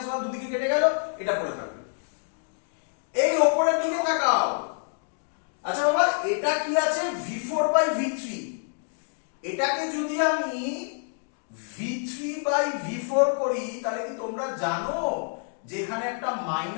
1 দুদিকে কেটে গেল, এটা পড়ে থাকবে। এই উপরের দিকে তাকাও, আচ্ছা বাবা এটা কি আছে V4 বাই V3, এটাকে যদি আমি V3 বাই V4 করি তাহলে কি তোমরা জানো যে এখানে একটা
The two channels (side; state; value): right; silent; 60 dB below the other